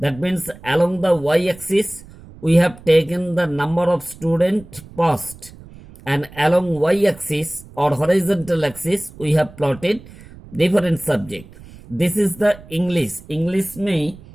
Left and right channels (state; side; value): noise; right; rumble, 20 dB below the sound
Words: means along the y-axis we have taken the number of students passed, and along y-axis or horizontal axis we have plotted different subject. This is the English. English may